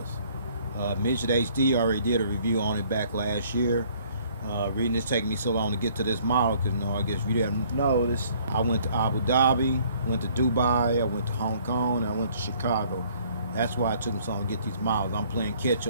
Midget HD already did a review on it back last year. Reading this taking me so long to get to this model because I guess if you didn't know this, I went to Abu Dhabi, went to Dubai, I went to Hong Kong, and I went to Chicago. That's why it took me so long to get these models. I'm playing catch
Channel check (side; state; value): both; inverted; correlation -0.60